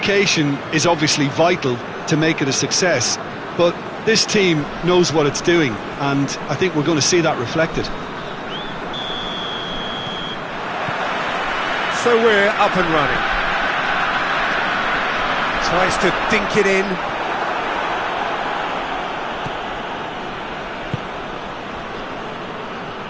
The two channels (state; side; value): identical; both; correlation 1.00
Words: is obviously vital to make it a success, but this team knows what it's doing, and I think we're going to see that reflected. So we're up and running. Tries to dink it in.